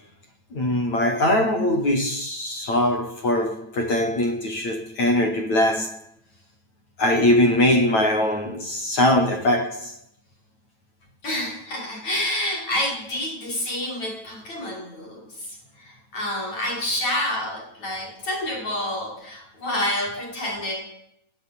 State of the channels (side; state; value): right; late; 9.1 ms